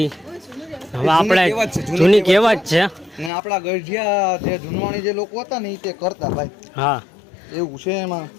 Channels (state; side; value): drops out; right; at 3.3 s